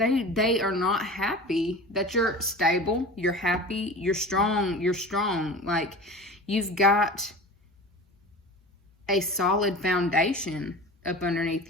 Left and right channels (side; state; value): both; normal; correlation 0.35